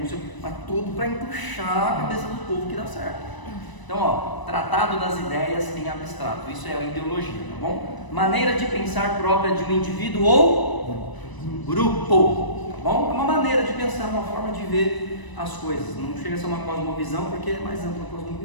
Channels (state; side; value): late; right; 1.0 ms